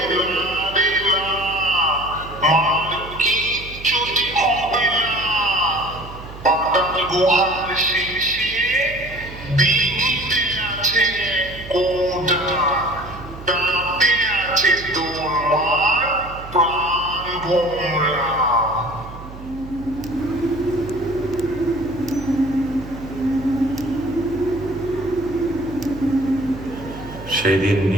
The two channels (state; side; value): noise; right; hum, 14 dB below the sound